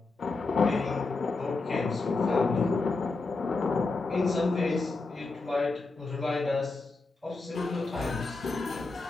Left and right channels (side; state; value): right; quieter; 3.7 dB